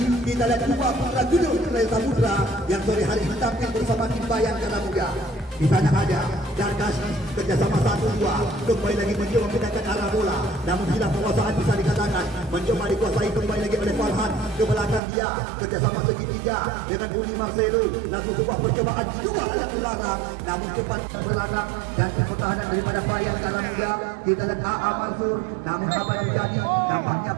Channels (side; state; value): left; drops out; at 15.0 s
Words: Kita lihat dua putra gunung Raya Samudra yang sore hari ini tampil bersama tim Bayangkara Muda. Di sana ada Darkasi kerjasama 1-2 kembali lagi mencoba memindahkan arah bola namun hilang penguasaan bisa dikatakan. Mencoba dikuasai kembali lagi oleh Farhan ke belakang dia kerjasama segitiga dengan Uli Marcelo. Langsung sebuah percobaan dua yang dilarang namun cepat belakang dan pertahanan daripada Bayangkara Muda. Kita lihat AA Mansur namun apa yang terjadi nampaknya